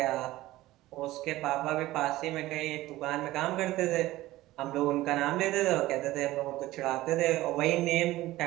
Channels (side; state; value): left; quieter; 16.9 dB